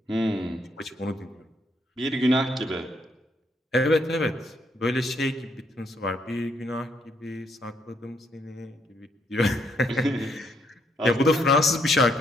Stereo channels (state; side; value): normal; both; correlation 0.73